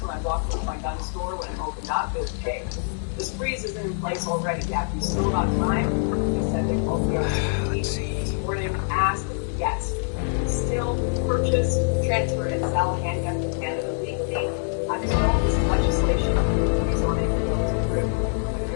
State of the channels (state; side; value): silent; right; digital silence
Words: when I walked into my gun store when it opened up is, hey, yeah, if you still got time, they said they called the OCD this morning, asked, yes, still purchase, transfer, and sell handguns in Canada legally until this legislation is on it and goes through.